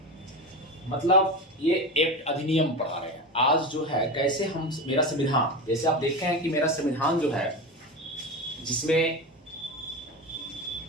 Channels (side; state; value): both; normal; correlation 0.24